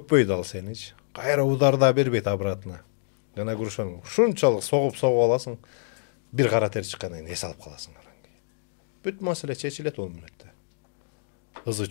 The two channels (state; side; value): silent; right; digital silence